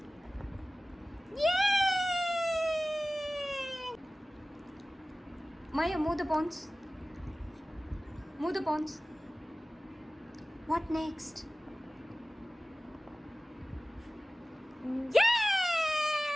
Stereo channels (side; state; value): both; normal; correlation 0.97